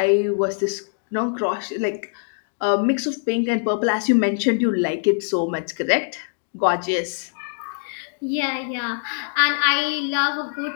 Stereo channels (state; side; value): silent; right; digital silence